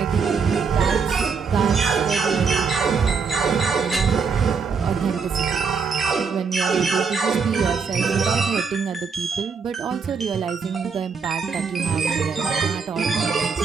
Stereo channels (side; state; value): left; quieter; 5.5 dB